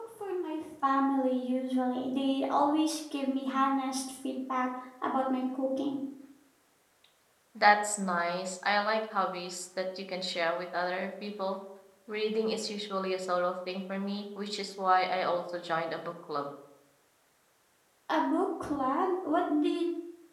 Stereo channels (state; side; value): identical; both; correlation 1.00